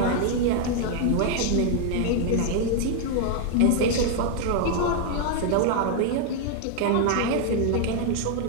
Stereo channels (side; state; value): both; different; correlation 0.00